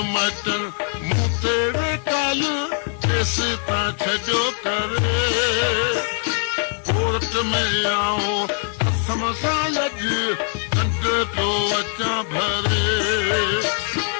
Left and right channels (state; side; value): silent; right; 56 dB below the other